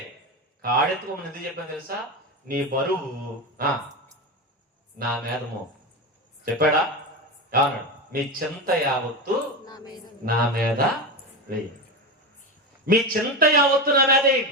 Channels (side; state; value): both; normal; correlation 0.18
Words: కాడెత్తుకోమని ఎందుకు చెప్పాను తెలుసా? నీ బరువు నా మీద చెప్పాడా? ఏమన్నాడు? మీ చింత యావత్తు నా మీద వేయండి. మీ చింత యావత్తు నా మీద